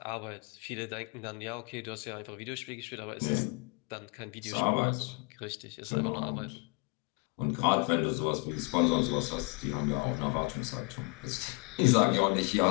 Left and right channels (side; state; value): right; quieter; 31.9 dB